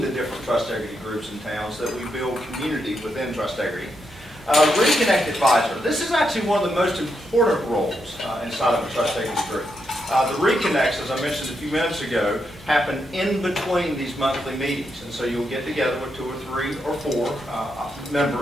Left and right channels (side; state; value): both; normal; correlation 0.82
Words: the different Trustegrity groups and towns that we build community within Trustegrity. Reconnect advisor. This is actually one of the most important roles inside of a Trustegrity group. The reconnects, as I mentioned a few minutes ago, happen in between these monthly meetings. And so you'll get together with 2 or 3 or 4